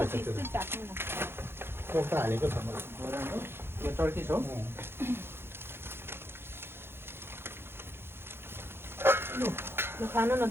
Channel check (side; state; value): left; late; 0.11 ms